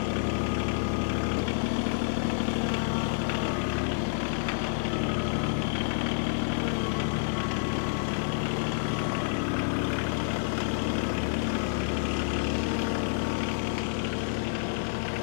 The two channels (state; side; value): silent; right; 59 dB below the other